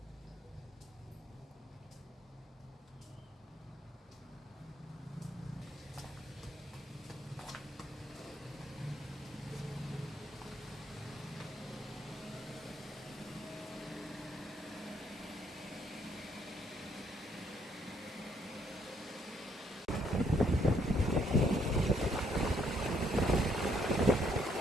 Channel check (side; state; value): both; normal; correlation 0.70